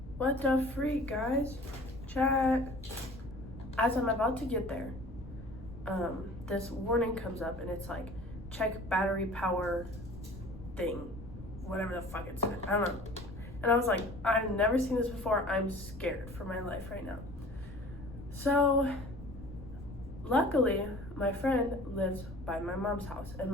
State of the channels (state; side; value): noise; left; rumble, 14 dB below the sound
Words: What the freak, guys? Chat. As I'm about to get there, this warning comes up and it's like, check battery power thing, whatever the fuck it's, I don't know. And I was like, I've never seen this before. I'm scared for my life right now. So luckily my friend lives by my mom's house, and